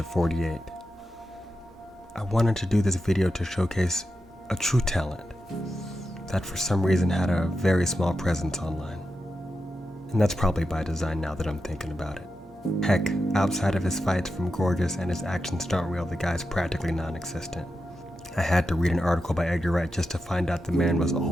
48. I wanted to do this video to showcase a true talent that for some reason had a very small presence online. And that's probably by design now that I'm thinking about it. Heck, outside of his fights from Gorgeous and his action stunt reel, the guy's practically non-existent. I had to read an article by Edgar Wright just to find out the man was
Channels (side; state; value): both; normal; correlation 0.89